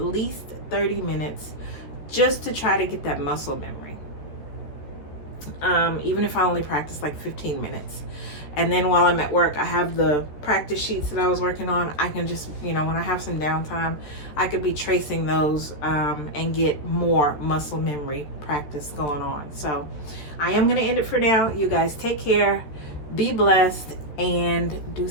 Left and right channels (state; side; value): late; right; 13 ms